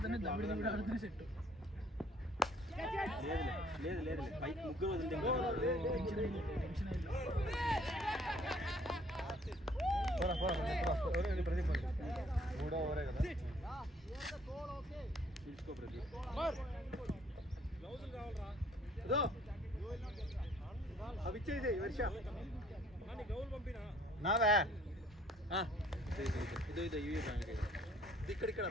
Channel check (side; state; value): both; normal; correlation 0.60